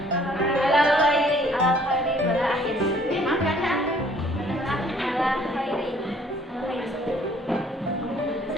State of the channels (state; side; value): normal; both; correlation 0.58